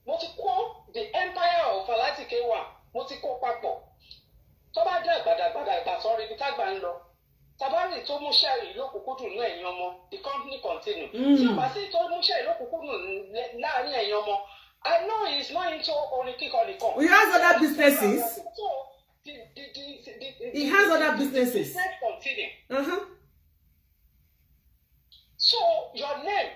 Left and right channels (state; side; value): identical; both; correlation 1.00